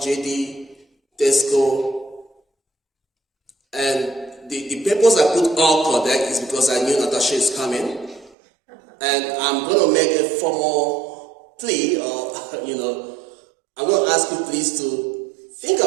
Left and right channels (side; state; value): left; drops out; at 8.3 s